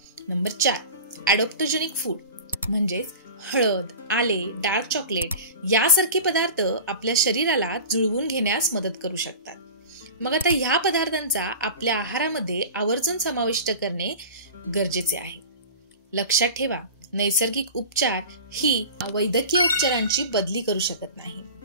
नंबर 4, ॲडॉप्टोजेनिक फूड म्हणजेच हळद, आले, डार्क चॉकलेट यासारखे पदार्थ आपल्या शरीराला जुळवून घेण्यास मदत करू शकतात. मग आता ह्या पदार्थांचा आपल्या आहारामध्ये आवर्जून समाविष्ट करणे गरजेचे आहे. लक्षात ठेवा, नैसर्गिक उपचार ही वैद्यकीय उपचारांची बदली करू शकत नाही.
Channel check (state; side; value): inverted; both; correlation -0.35